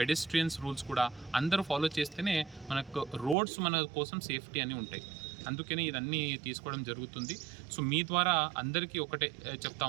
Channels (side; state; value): left; drops out; at 3.4 s